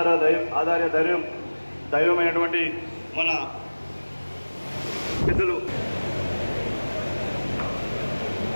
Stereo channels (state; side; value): inverted; both; correlation -1.00